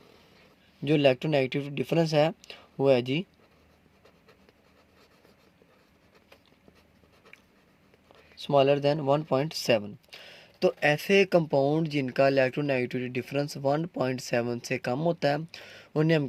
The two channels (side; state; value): both; identical; correlation 1.00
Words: जो इलेक्ट्रोनेगेटिव डिफरेंस है वो है जी स्मॉलर देन 1.7। तो ऐसे कंपाउंड जिनका इलेक्ट्रोनेगेटिविटी डिफरेंस 1.7 से कम होता है उन्हें हम